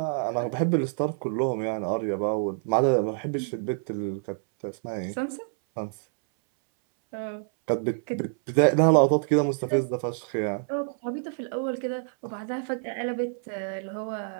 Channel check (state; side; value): silent; left; 60 dB below the other